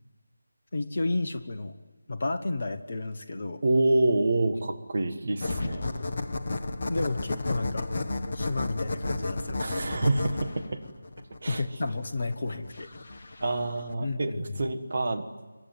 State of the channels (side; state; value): both; inverted; correlation -0.93